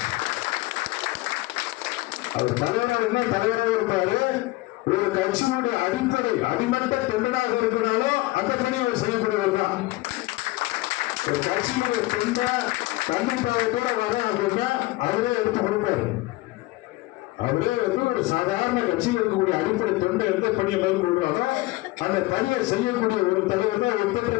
அவர் தலைவராக தலைவராக இருப்பாரு. ஒரு கட்சியினுடைய அடிப்படை அடிமட்ட தொண்டனாக இருக்கிறாலும் அந்த பணி அவர் செய்யக்கூடியவர் தான். ஒரு கட்சியினுடைய தொண்டை கண்டிப்பாக வர அப்படின்னா அவரே எடுத்து கொடுப்பாரு. அவரே வந்து ஒரு சாதாரண கட்சியில் இருக்கக்கூடிய அடிப்படை தொண்டை எந்த பணியை மேற்கொள்றாரோ அந்த பணியை செய்யக்கூடிய ஒரு தலைவர் தான், ஒப்பற்ற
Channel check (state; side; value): quieter; right; 20.0 dB